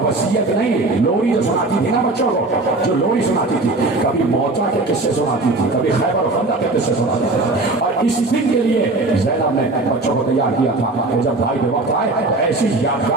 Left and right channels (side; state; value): left; quieter; 3.0 dB